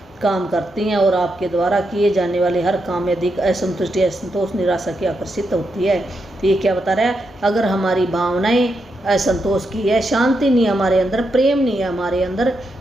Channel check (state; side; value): normal; both; correlation 0.83